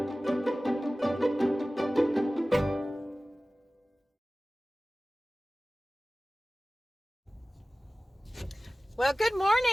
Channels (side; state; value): both; normal; correlation 0.97